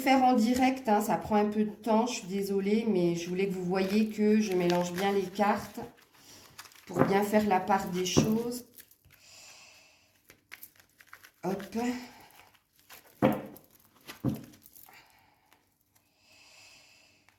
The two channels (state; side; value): identical; both; correlation 1.00